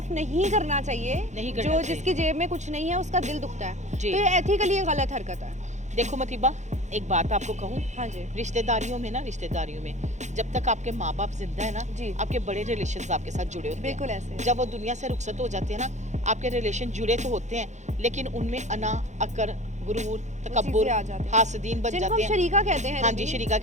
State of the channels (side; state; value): left; late; 0.34 ms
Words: नहीं करना चाहिए। नहीं करना जो चाहिए। जिसकी जेब में कुछ नहीं है उसका दिल दुखता है। जी। तो ये एथिकली गलत हरकत है। देखो मतीबा, एक बात आपको कहूँ, हाँ जी। रिश्तेदारियों में जब तक आपके माँ बाप जिंदा है ना, जी। आपके बड़े रिलेशंस आपके साथ जुड़े होते हैं। बिल्कुल ऐसे। जब वो दुनिया से रुखसत हो जाते हैं ना, आपके रिलेशन जुड़े तो होते हैं लेकिन उनमें अना, अकर, गुरूर, तकब्बुर, आ जाते हैं। हासदीन बन जिनको जाते हम हैं। शरीका कहते हैं हाँ रबी, जी, शरीका